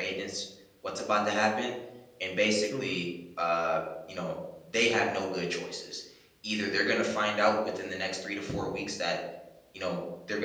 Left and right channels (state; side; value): identical; both; correlation 1.00